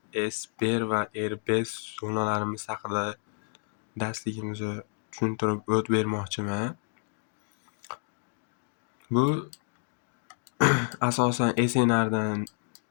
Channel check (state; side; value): silent; right; 58 dB below the other